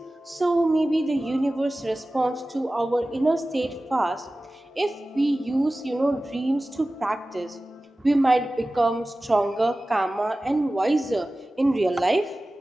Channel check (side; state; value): both; normal; correlation 0.96